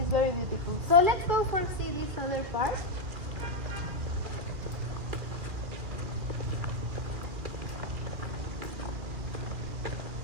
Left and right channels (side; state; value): left; late; 2.4 ms